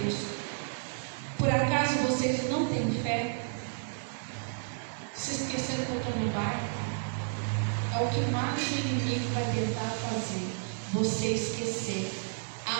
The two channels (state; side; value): silent; left; 57 dB below the other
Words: por acaso vocês não têm fé? Se esqueceram que eu estou no barco? É o que mais o inimigo vai tentar fazer, você esquecer